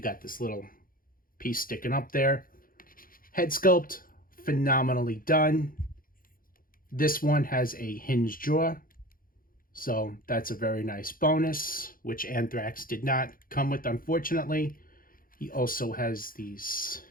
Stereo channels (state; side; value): late; right; 0.41 ms